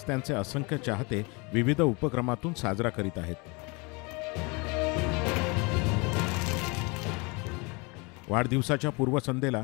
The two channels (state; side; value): quieter; right; 28.7 dB